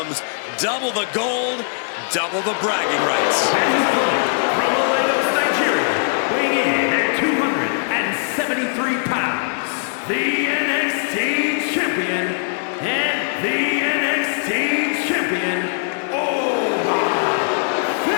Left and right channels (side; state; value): right; silent; 59 dB below the other